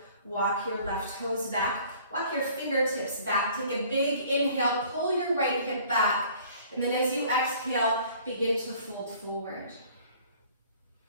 walk your left toes back. Walk your fingertips back. Take a big inhale, pull your right hip back. And then as you exhale, begin to fold forward.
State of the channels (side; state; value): both; inverted; correlation -0.53